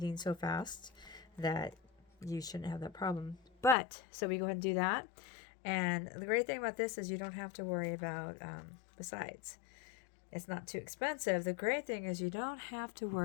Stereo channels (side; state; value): right; drops out; at 3.8 s